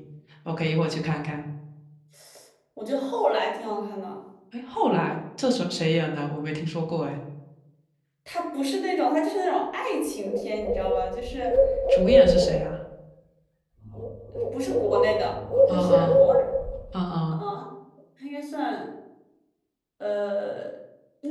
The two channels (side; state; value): both; identical; correlation 1.00